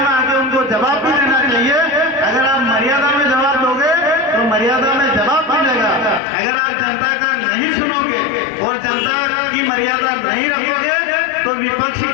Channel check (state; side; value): drops out; right; at 6.2 s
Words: आके उनको जवाब भी देना चाहिए। अगर आप मर्यादा में जवाब दोगे तो मर्यादा में जवाब मिलेगा। अगर आप जनता का नहीं सुनोगे और जनता की मर्यादा नहीं रखोगे तो विपक्ष